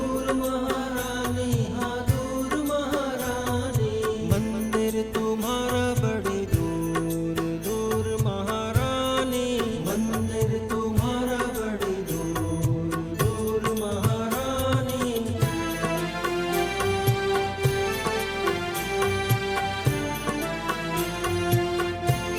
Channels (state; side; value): identical; both; correlation 1.00